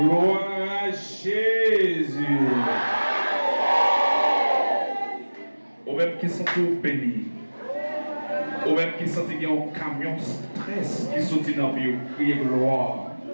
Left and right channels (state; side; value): inverted; both; correlation -1.00